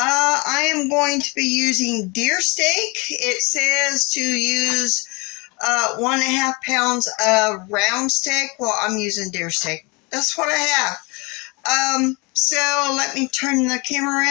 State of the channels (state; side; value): quieter; right; 28.3 dB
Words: am going to be using deer steak. It says to use 1.5 pounds of round steak. Well, I'm using deer steak. That's what I have. So let me turn the camera